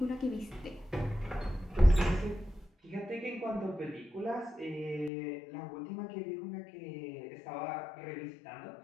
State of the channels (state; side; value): drops out; right; at 5.1 s